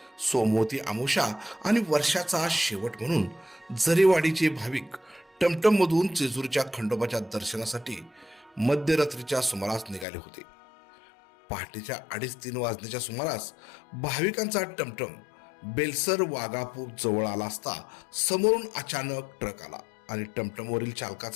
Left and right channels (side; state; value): right; drops out; at 10.1 s